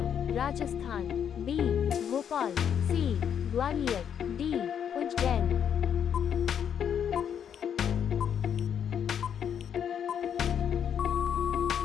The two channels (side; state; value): right; quieter; 8.5 dB